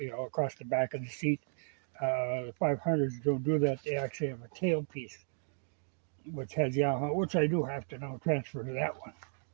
across the back of the seat. The 500s don't do that. They actually have a tailpiece, which has Yamaha, which I do have to now transfer to that one.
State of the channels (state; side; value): silent; left; digital silence